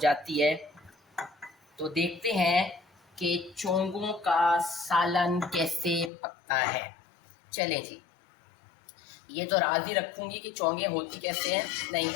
है तो देखते हैं कि चोंगों का सालन कैसे पकता है। चलें जी, ये तो राज ही रखूँगी कि चोंगे होती कैसे हैं। नहीं,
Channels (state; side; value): drops out; right; at 6.1 s